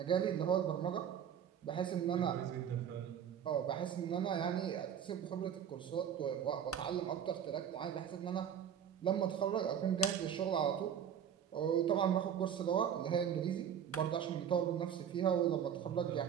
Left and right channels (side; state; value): left; quieter; 8.8 dB